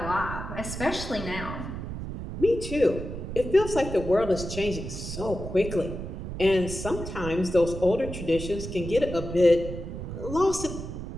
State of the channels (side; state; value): right; noise; rumble, 7 dB below the sound